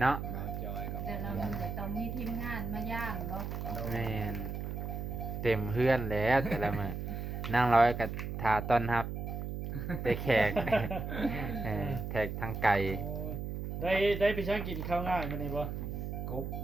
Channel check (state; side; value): noise; right; hum, 5 dB below the sound